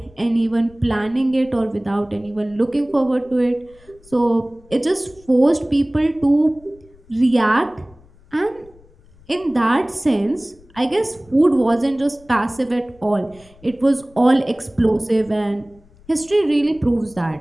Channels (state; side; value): noise; left; rumble, 27 dB below the sound